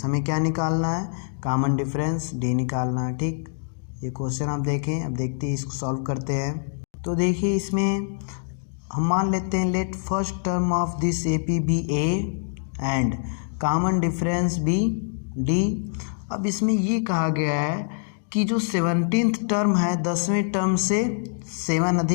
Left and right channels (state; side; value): silent; right; digital silence